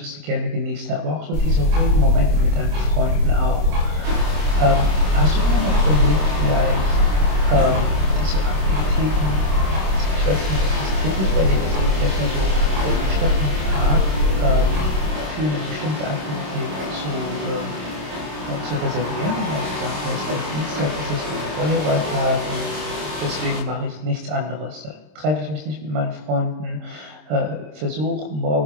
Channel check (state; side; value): late; left; 26 ms